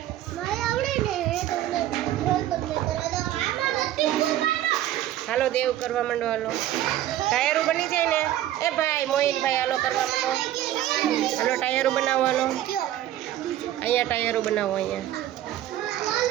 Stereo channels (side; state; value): left; quieter; 13.1 dB